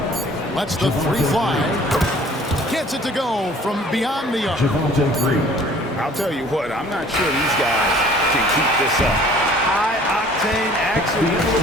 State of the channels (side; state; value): both; normal; correlation 0.52